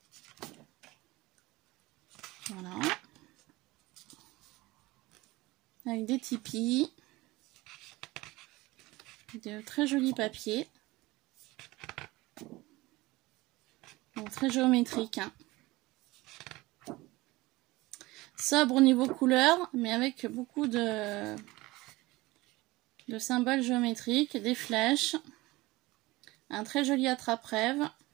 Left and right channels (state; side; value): quieter; left; 20.5 dB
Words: Voilà. Avec des tipis. De très jolis papiers. Donc très géométrique. Hein. Sobre au niveau couleur, mais avec beaucoup de symboles géométriques, des flèches, un très joli attrape-rêve.